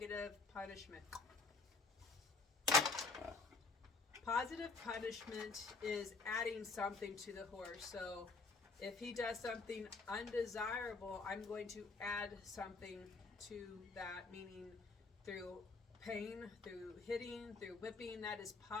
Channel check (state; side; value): quieter; right; 4.0 dB